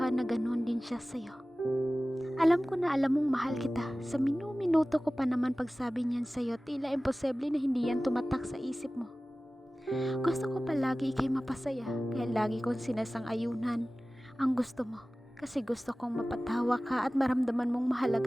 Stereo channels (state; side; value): normal; both; correlation 0.97